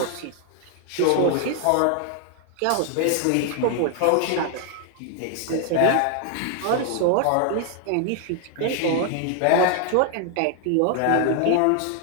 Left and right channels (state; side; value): different; both; correlation 0.00